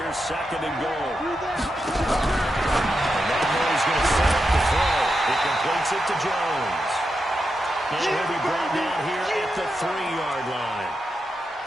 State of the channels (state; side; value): normal; both; correlation 0.87